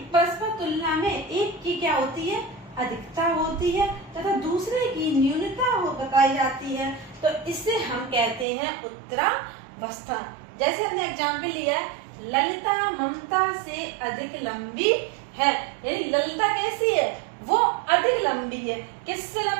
परस्पर तुलना में एक की क्या होती है, अधिकता होती है, तथा दूसरे की न्यूनता बताई जाती है, तो इससे हम कहते हैं उत्तरावस्था। जैसे हमने एग्जाम्पल लिया है, ललिता ममता से अधिक लंबी है, यानी ललिता कैसी है, वो अधिक लंबी है। किससे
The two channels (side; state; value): left; drops out; at 8.5 s